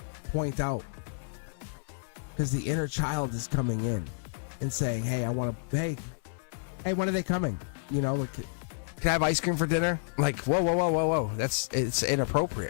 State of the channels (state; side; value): silent; right; 58 dB below the other